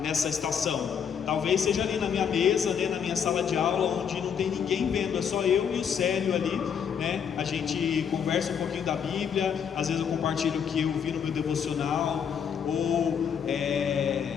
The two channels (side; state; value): right; quieter; 7.5 dB